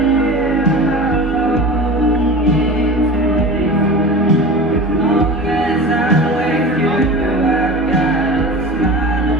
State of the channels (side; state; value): both; normal; correlation 0.33